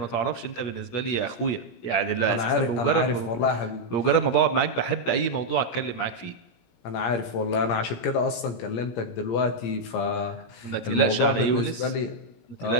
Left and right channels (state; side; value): late; right; 17 ms